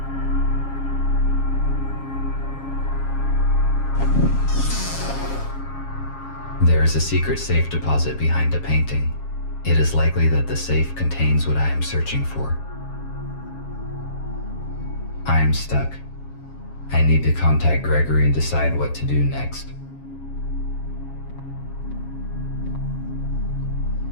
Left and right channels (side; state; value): right; late; 7.3 ms